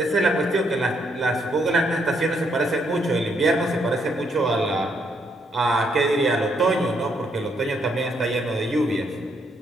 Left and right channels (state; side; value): normal; both; correlation 0.74